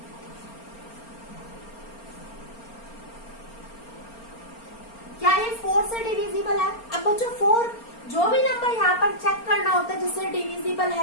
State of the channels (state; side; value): late; right; 4.3 ms